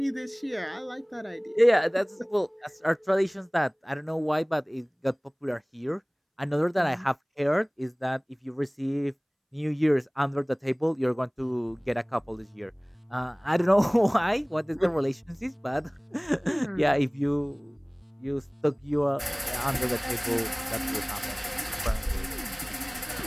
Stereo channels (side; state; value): both; identical; correlation 1.00